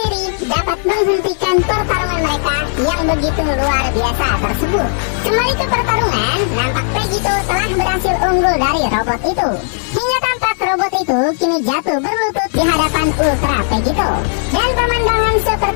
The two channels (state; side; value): silent; right; digital silence